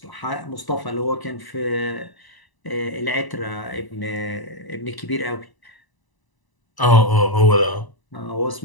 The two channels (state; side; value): late; right; 1.0 ms